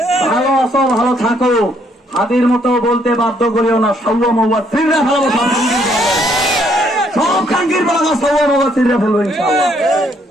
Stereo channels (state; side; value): normal; both; correlation 0.69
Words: ভালো আছো, ভালো থাকো, হাদির মতো বলতে বাধ্য করিও না। সৌয়া মৌয়া ফিরে ফেলবো, সব খাঙ্গির বাংলা সৌয়া মৌয়া ফিরে ফেলবো ইনশাআল্লাহ।